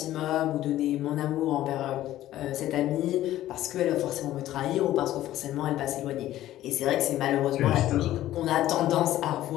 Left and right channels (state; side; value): quieter; right; 13.9 dB